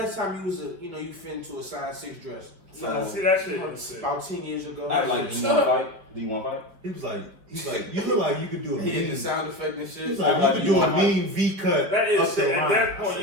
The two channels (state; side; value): late; left; 5.2 ms